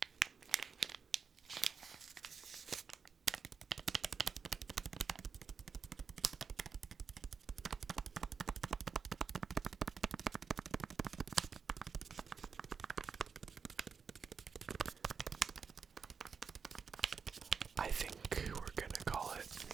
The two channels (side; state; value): left; quieter; 5.9 dB